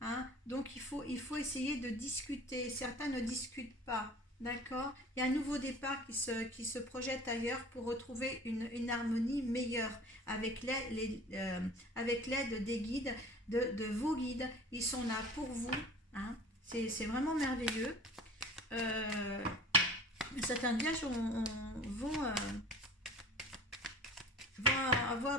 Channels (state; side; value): normal; both; correlation 0.43